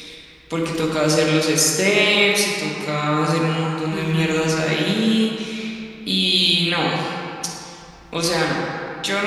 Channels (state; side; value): identical; both; correlation 1.00